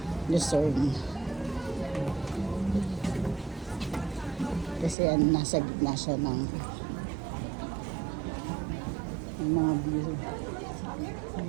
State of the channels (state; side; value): drops out; left; at 5.0 s